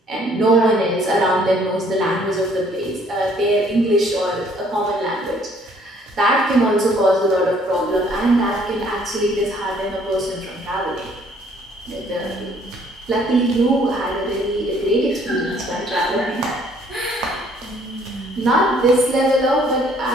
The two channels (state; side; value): normal; both; correlation 0.61